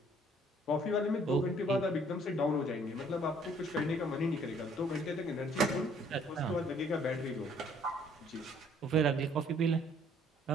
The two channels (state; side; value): normal; both; correlation 0.60